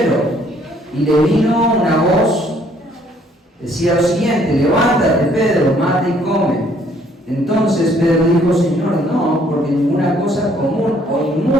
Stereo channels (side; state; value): both; normal; correlation 0.63